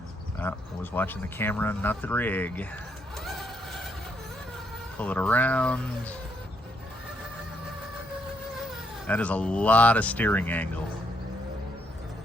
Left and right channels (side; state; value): both; normal; correlation 0.75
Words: I was watching the camera, not the rig. Pull it around. That is a lot of steering angle.